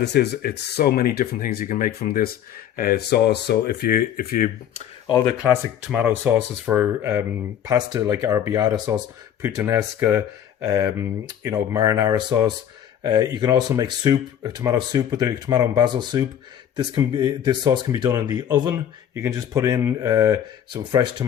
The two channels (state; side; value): quieter; right; 9.8 dB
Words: is, it's so many different things you can make from this sauce. So if you all the classic tomato sauces for pasta, like arrabbiata sauce, puttanesca, marinara sauce. You can also make soup, a tomato soup with the tomato and basil soup. This sauce can be done in the oven. You can just put in some fresh